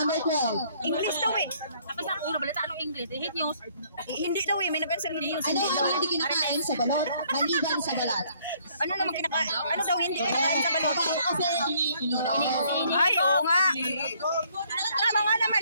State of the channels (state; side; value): inverted; both; correlation -0.64